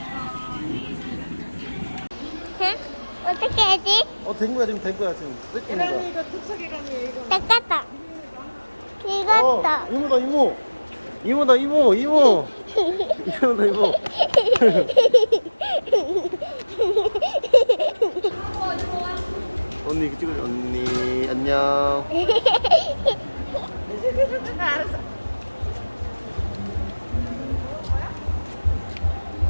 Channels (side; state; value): both; inverted; correlation -1.00